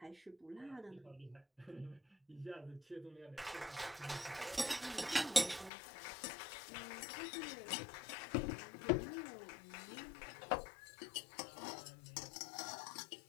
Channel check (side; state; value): right; drops out; at 5.7 s